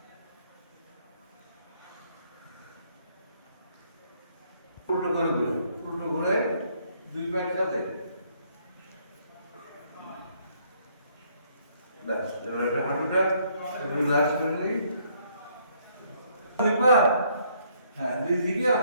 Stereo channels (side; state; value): both; inverted; correlation -0.67